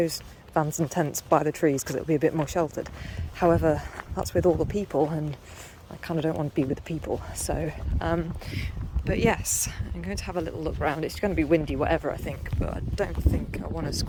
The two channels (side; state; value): both; identical; correlation 1.00